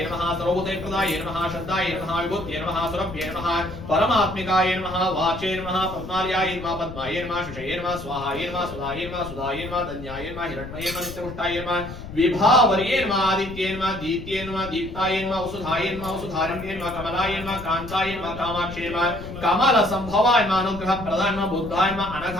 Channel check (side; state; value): left; noise; rumble, 12 dB below the sound